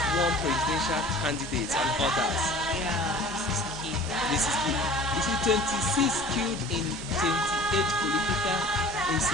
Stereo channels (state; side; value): normal; both; correlation 0.44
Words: warn presidential candidates and others. Yeah, this is key. You see, 26 killed in 28 political